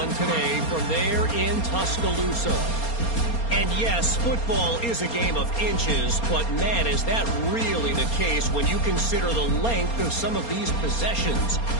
today from there in Tuscaloosa. And yes, football is a game of inches, but man, is that really the case when you consider the length of some of these possessions.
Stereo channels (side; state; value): right; late; 4.3 ms